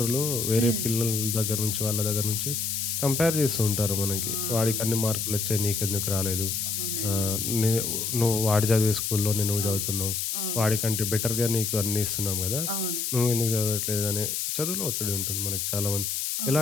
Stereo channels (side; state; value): left; noise; hiss, 1 dB below the sound